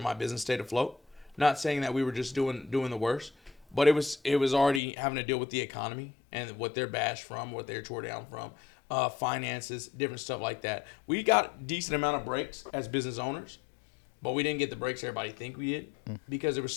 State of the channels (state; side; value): drops out; right; at 4.8 s